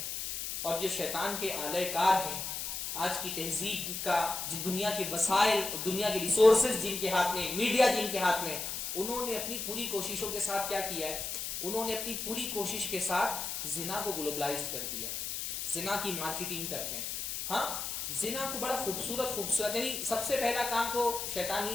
اور جو شیطان کے آلہ کار ہیں آج کی تہذیب کا, دنیا کے وسائل, دنیا کے ریسورسز جن کے ہاتھ میں, میڈیا جن کے ہاتھ میں, انہوں نے اپنی پوری کوششوں کے ساتھ کیا کیا ہے؟ انہوں نے اپنی پوری کوشش کے ساتھ زنا کو گلوبلائز کر دیا. زنا کی مارکیٹنگ کرتے ہیں. ہاں, زنا کو بڑا خوبصورت یعنی سب سے پہلا کام تو شیطان ہی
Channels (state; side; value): noise; left; hiss, 4 dB below the sound